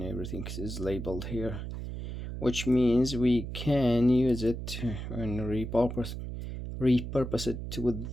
everything is labeled here, which means we can use it and repurpose it with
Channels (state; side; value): noise; right; hum, 7 dB below the sound